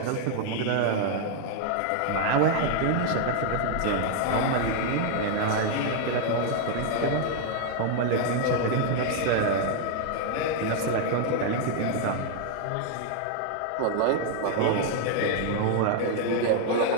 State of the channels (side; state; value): both; different; correlation 0.00